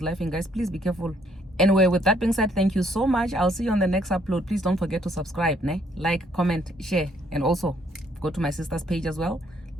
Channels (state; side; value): normal; both; correlation 0.67